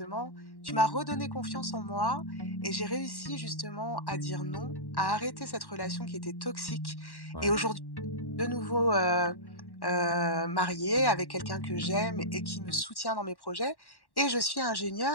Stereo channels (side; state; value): right; late; 1.1 ms